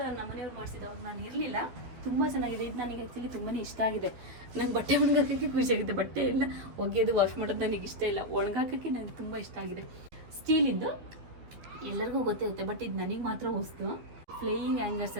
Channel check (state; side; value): late; left; 12 ms